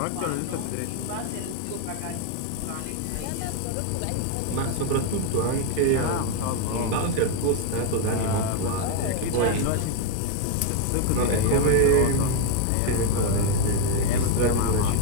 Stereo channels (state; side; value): different; both; correlation 0.01